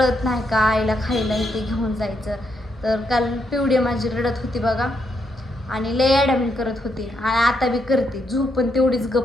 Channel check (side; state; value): both; normal; correlation 0.79